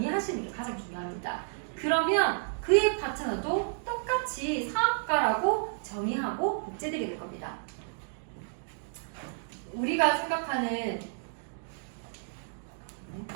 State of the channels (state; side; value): silent; left; digital silence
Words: 게 가장 중요합니다. 그러면 그의 파트너도 똑같이 사업가라고 정의하고 복제되게 될 겁니다. 우리가 생각하는